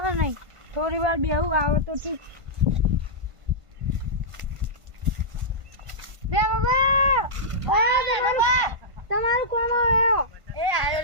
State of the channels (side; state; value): left; late; 1.5 ms